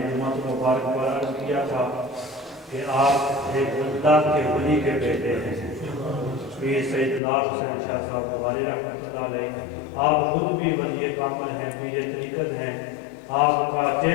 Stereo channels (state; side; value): drops out; right; at 7.2 s